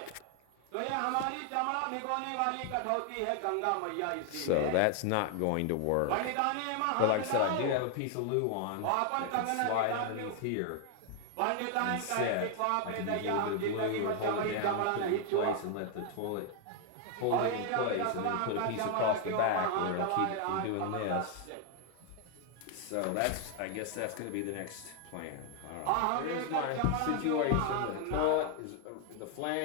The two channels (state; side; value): different; both; correlation 0.00